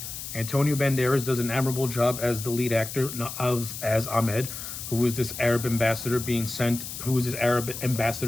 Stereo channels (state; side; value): noise; left; hiss, 8 dB below the sound